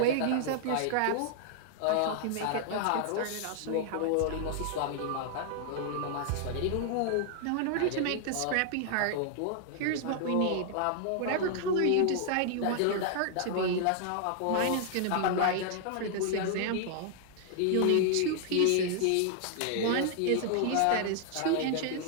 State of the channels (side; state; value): both; different; correlation 0.00